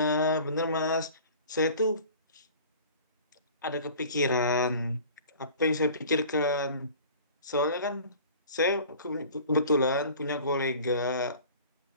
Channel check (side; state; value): both; inverted; correlation -0.45